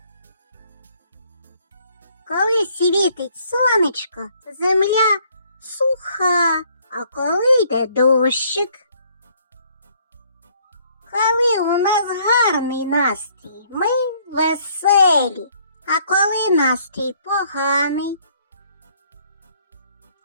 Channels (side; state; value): both; inverted; correlation -0.63